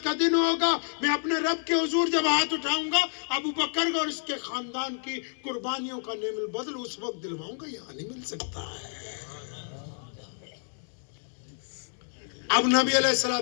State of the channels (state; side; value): silent; right; 59 dB below the other